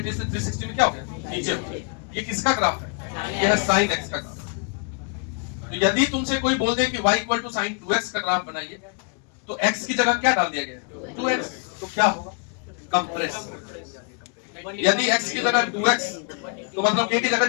से 360 में क्या हो गया, नीचे। ये किसका ग्राफ है? ये है साइन एक्स का ग्राफ। तो यदि तुमसे कोई बोल दे कि y equal to sign 2x का ग्राफ बनाइए, तो x की जगह क्या डाल दिया गया, 2x, तो क्या होगा, कंप्रेस। यदि x की जगह 2x, तो मतलब k की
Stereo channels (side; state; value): right; quieter; 35.9 dB